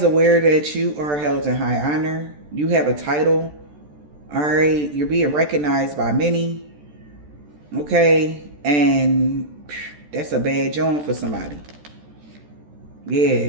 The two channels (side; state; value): left; late; 14 ms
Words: aware that you are held in high honor. You have a title. All right. You're being recognized by many. Okay. And that's a bad joint for somebody. Yeah,